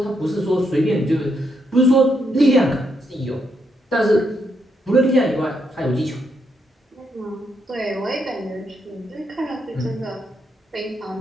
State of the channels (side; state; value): both; normal; correlation 0.78